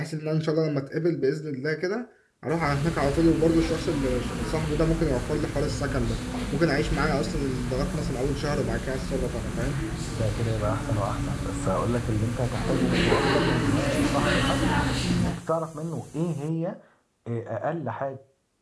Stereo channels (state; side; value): identical; both; correlation 1.00